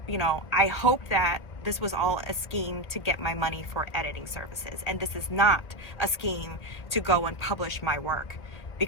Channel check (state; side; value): late; right; 1.7 ms